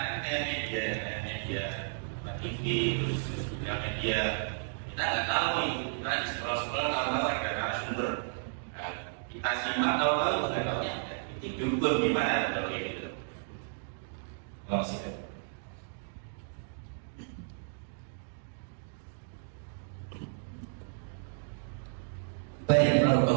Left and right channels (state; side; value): silent; left; digital silence